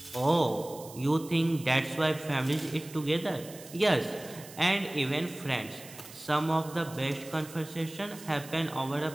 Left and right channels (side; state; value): right; noise; hiss, 17 dB below the sound